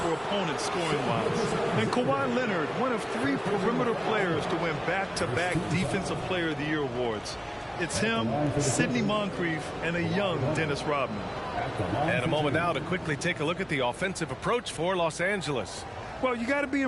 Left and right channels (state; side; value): identical; both; correlation 1.00